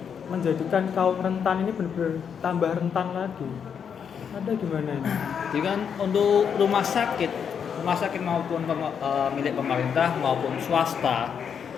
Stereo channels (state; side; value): quieter; right; 7.3 dB